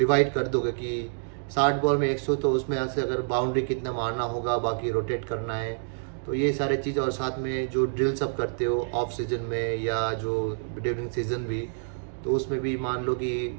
कर दोगे कि 60 बॉल में 100, तो उसमें से अगर बाउंड्री कितना मारना होगा, बाकी रोटेट करना है, तो ये सारे चीज़। और साथ में जो ड्रिल्स आप करते हो ऑफ सीजन में या जो ड्यूरिंग सीजन भी, तो उसमें भी मान लो कि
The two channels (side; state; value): left; silent; digital silence